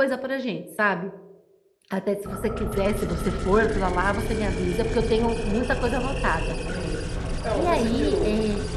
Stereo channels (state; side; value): identical; both; correlation 1.00